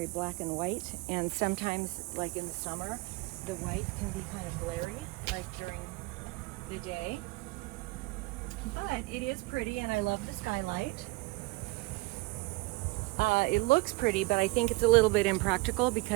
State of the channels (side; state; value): left; quieter; 23.9 dB